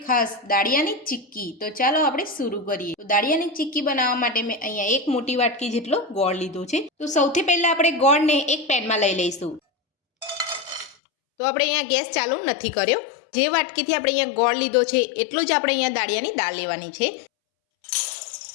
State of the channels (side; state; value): right; drops out; at 11.0 s